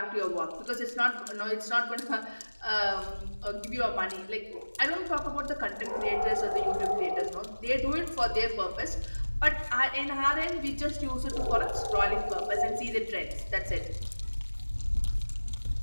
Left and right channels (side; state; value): both; inverted; correlation -1.00